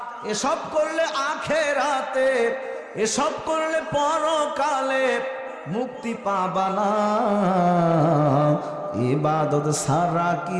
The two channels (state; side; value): identical; both; correlation 1.00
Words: এসব করলে আখেরাতে, এসব করলে পরকালে মুক্তি পাবা না। ইবাদত সারা